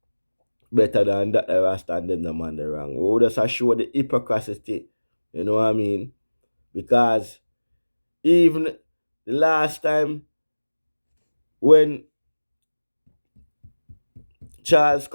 better than that the Rasta and them the man the wrong. We just show the hypocrisy. You know what I mean? Because even the last time when Charles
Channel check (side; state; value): both; inverted; correlation -1.00